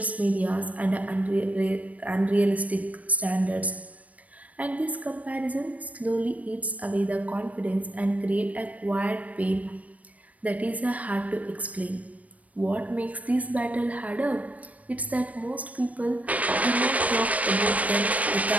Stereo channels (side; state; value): left; late; 0.069 ms